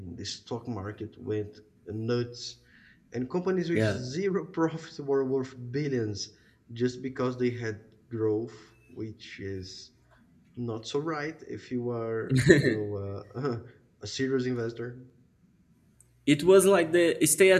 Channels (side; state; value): both; identical; correlation 1.00